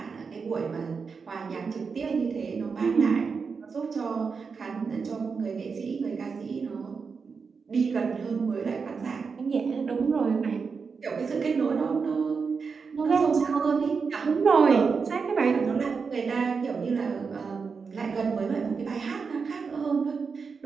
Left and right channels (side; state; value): left; quieter; 5.3 dB